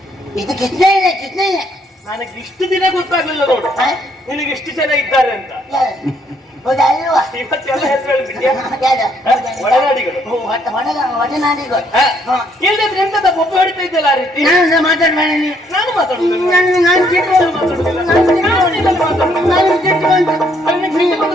ಇದು ಕಿತ್ನೆ ನನಗೆ ಇಷ್ಟು ದಿನ ಗೊತ್ತಾಗ್ಲಿಲ್ಲ ನೋಡು, ನಿನಗೆ ಇಷ್ಟು ಜನ ಇದ್ದಾರೆ ಅಂತ. ಹೌದಾ ಅಲ್ವಾ? ಇವತ್ತೆಲ್ಲ ಹೆಸರು ಒಳನಾಡಿಗಳು. ಒಡನಾಡಿಗಳು ಇಲ್ಲದ್ರೆ ಎಂತದ ಒಬ್ಬ ಹೊಡಿತಾ ಇದ್ದಲ್ಲ ಆ ರೀತಿ. ನಾನು ಮಾತಾಡ್ಬೇಡ ನೀವು. ನಾನು ಮಾತಾಡುದಿಲ್ಲ.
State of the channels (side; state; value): both; normal; correlation 0.69